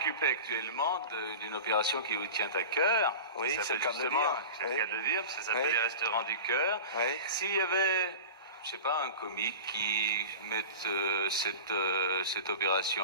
actuellement d'une opération qui vous tient à cœur. Oui, c'est le cas de le dire. C'est le cas de le dire, parce que ça s'appelle les Restaurants du Cœur. Oui. S'il y avait, je sais pas, un comique qui mette cette opération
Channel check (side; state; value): both; inverted; correlation -0.32